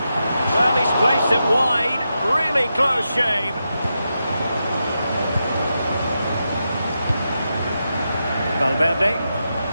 he's placed it wide. Really close shave. Valverde.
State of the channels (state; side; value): inverted; both; correlation -0.87